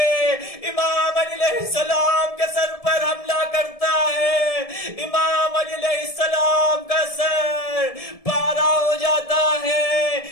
امام علی علیہ السلام کے سر پر حملہ کرتا ہے. امام علی علیہ السلام کا سر پارا ہو جاتا ہے.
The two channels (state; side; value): late; right; 1.7 ms